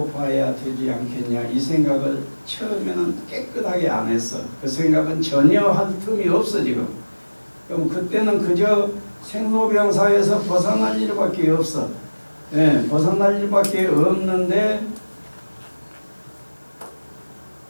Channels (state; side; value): inverted; both; correlation -1.00